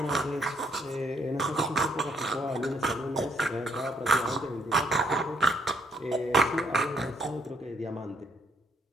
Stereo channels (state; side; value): normal; both; correlation 0.68